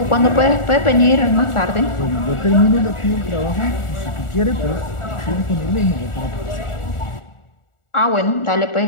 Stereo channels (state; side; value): late; right; 1.4 ms